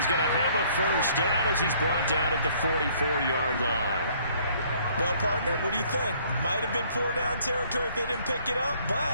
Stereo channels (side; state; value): both; inverted; correlation -0.61